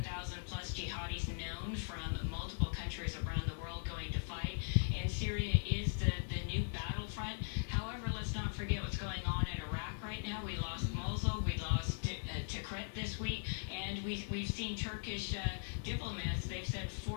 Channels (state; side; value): silent; right; 51 dB below the other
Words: plus jihadis known from multiple countries around the world going to fight, and Syria is the new battlefront. However, let's not forget what's going on in Iraq right now. We lost Mosul, we lost Tikrit this week, and we've seen Turkish diplomats. They've said